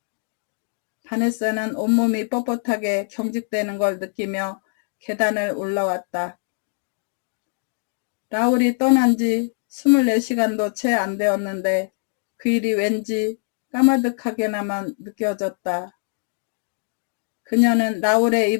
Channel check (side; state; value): right; silent; digital silence